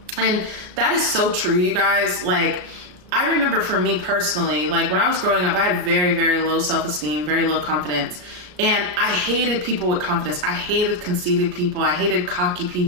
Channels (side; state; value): left; late; 33 ms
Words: And that is so true, you guys. I remember for me personally, when I was growing up, I had very, very low self-esteem, very low confidence. And I hated people with confidence. I hated conceited people. I hated cocky